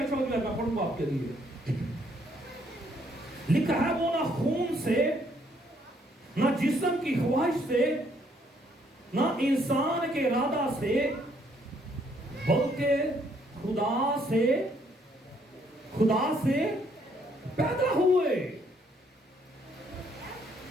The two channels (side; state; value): both; normal; correlation 0.68